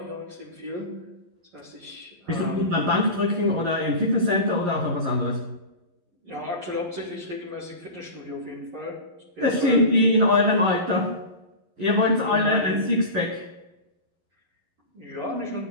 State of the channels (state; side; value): late; left; 11 ms